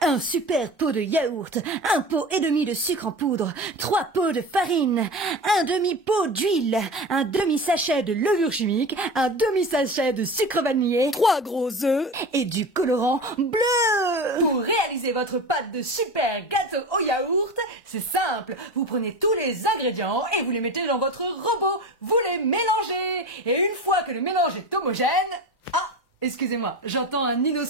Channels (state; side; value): normal; both; correlation 0.29